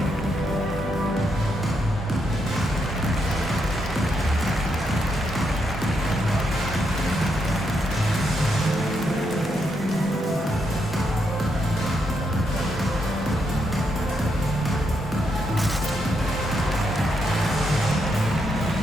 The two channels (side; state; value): both; normal; correlation 0.80